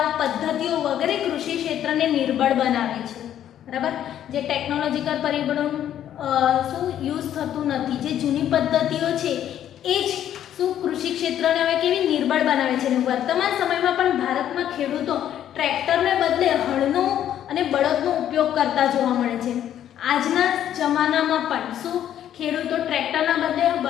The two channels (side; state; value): right; quieter; 10.8 dB